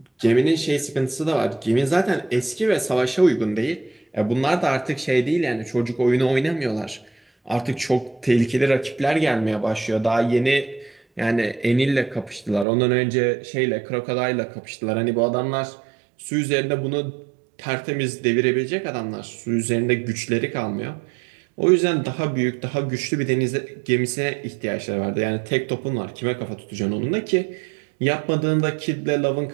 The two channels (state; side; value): drops out; left; at 12.7 s